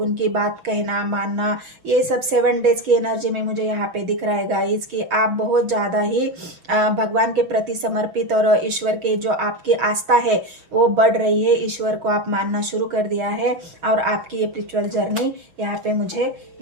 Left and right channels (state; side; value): late; left; 6.4 ms